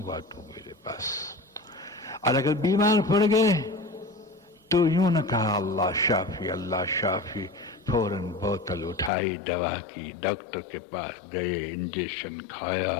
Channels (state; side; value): drops out; right; at 9.1 s